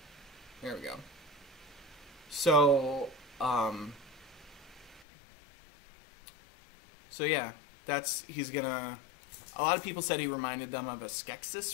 There we go. So, so yeah, he's gonna, a lot of people said he reminded them of a Skeksis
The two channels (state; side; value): drops out; right; at 5.1 s